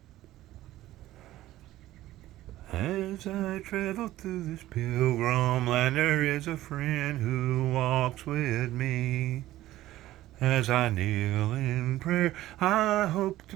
As I travel through this pilgrim land, there is a friend who walks with me. As I kneel in prayer, I hope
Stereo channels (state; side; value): quieter; left; 15.2 dB